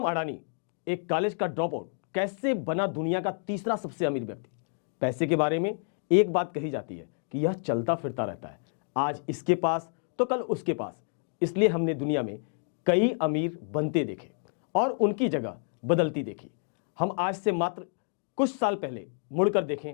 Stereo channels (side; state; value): right; silent; 58 dB below the other